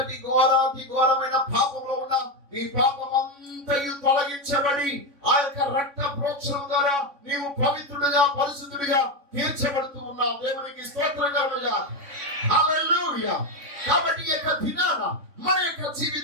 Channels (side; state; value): left; late; 3.6 ms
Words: ఘోరాతి ఘోరమైన పాపంలో ఉన్నా నీ పాపం అంతయు తొలగించబడి ఆ యొక్క రక్త ప్రోక్షణం ద్వారా నీవు పవిత్రుడిగా పరిశుద్ధుడిగా తీర్చబడుతూ ఉన్నావు. దేవునికి స్తోత్రం కలుగుగా. హల్లెలూయా. కాబట్టి ఈ యొక్క దినాన మన యొక్క